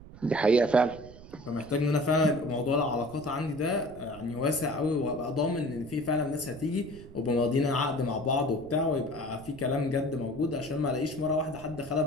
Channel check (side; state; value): right; noise; rumble, 17 dB below the sound